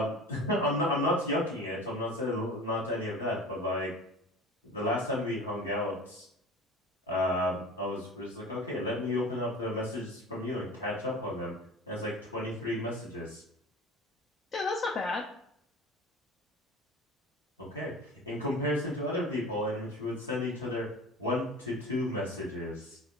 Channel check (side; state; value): both; normal; correlation 0.37